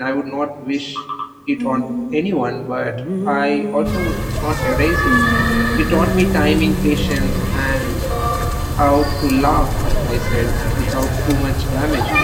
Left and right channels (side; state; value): both; identical; correlation 1.00